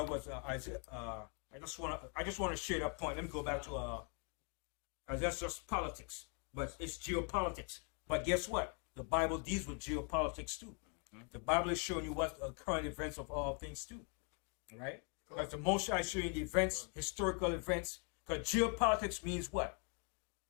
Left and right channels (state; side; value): quieter; right; 38.9 dB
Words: was I just want to share that point. Let me go back to that's just politics, but it's geopolitics. But guess what? The Bible deals with geopolitics too. The Bible is showing you what the current events of all things too. Right? Because the Most High is showing you the events, historical events. Because geopolitics means what?